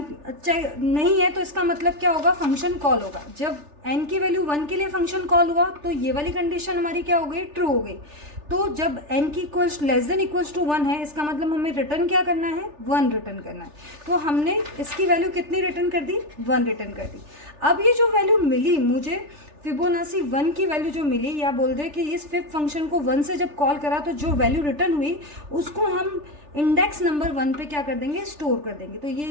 नहीं है तो इसका मतलब क्या होगा, फंक्शन कॉल होगा। जब n की वैल्यू 1 के लिए फंक्शन कॉल हुआ तो ये वाली कंडीशन हमारी क्या हो गई, ट्रू हो गई। तो जब n की लेस देन इक्वल्स टू 1 है, इसका मतलब हमें रिटर्न क्या करना है, 1 रिटर्न करना है। तो हमने इसकी वैल्यू कितनी रिटर्न कर दी, 1 रिटर्न कर दी। अब ये जो वैल्यू मिली मुझे, फिबोनाची 1 की वैल्यू जो मिली, या बोल दे कि इस 5 फंक्शन को 1 से जब कॉल करा तो जो वैल्यू रिटर्न हुई उसको हम इंडेक्स नंबर 1 पे क्या कर देंगे, स्टोर कर देंगे। तो ये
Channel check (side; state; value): left; late; 3.4 ms